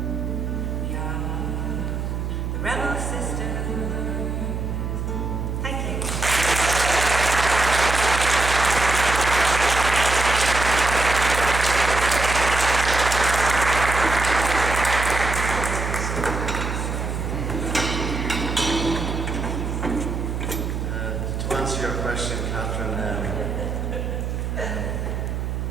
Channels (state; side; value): noise; right; hum, 3 dB below the sound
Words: We are the rebel sisters. Thank you. To answer your question, Catherine,